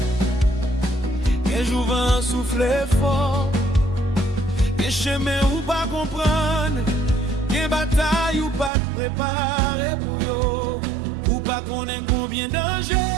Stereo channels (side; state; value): left; drops out; at 8.7 s